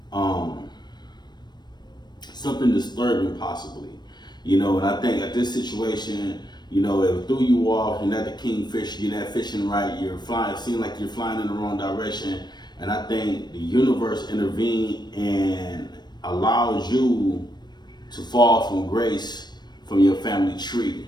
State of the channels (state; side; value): late; right; 0.21 ms